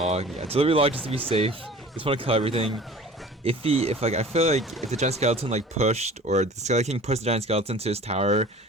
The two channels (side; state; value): both; normal; correlation 0.44